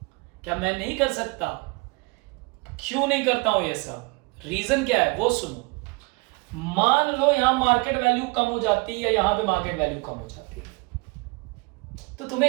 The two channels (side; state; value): left; quieter; 27.4 dB